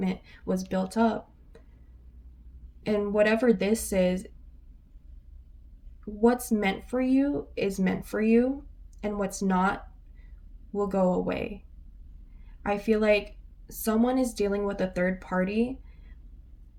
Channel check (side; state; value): both; identical; correlation 1.00